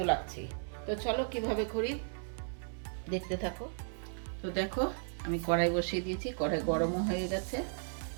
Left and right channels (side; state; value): left; silent; digital silence